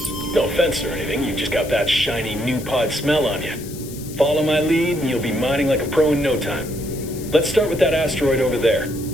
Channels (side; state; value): left; noise; hiss, 15 dB below the sound